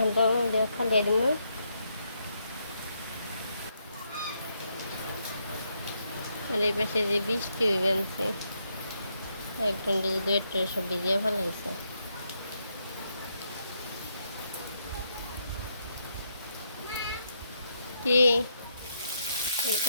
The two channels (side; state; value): both; inverted; correlation -0.78